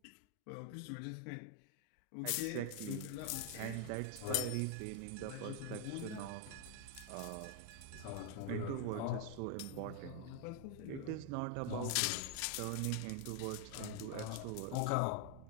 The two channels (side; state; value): both; different; correlation 0.00